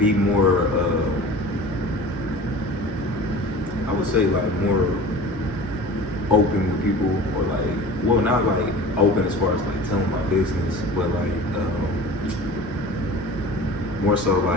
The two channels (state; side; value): normal; both; correlation 0.39